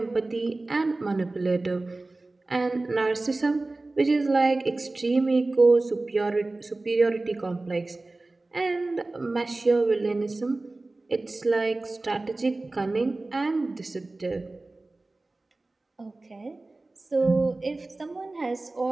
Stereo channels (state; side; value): quieter; left; 3.1 dB